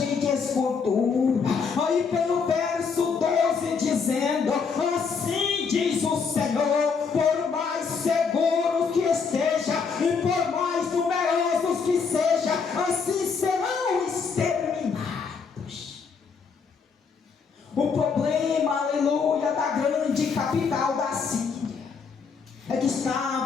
de escultura. Aí pelo verso 12 dizendo: assim diz o Senhor, por mais seguros que esteja e por mais numerosos que seja, assim serão exterminados. O problema, aleluia, da grande capital da Síria é que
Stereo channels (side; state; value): right; quieter; 5.5 dB